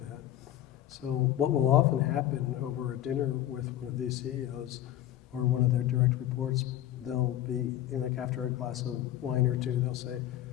that. So what will often happen over a dinner with one of these CEOs or one of their direct reports, they'll be, like after a glass of wine or two, they'll say,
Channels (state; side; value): quieter; right; 12.6 dB